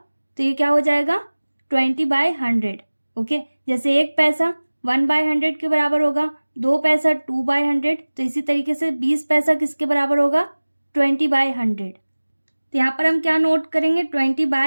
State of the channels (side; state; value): both; inverted; correlation -1.00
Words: तो ये क्या हो जाएगा 20/100। ओके, जैसे एक पैसा 1/100 के बराबर होगा, 2 पैसा 2/100, तो इसी तरीके से 20 पैसा किसके बराबर होगा 20/100। तो यहाँ पर हम क्या नोट करेंगे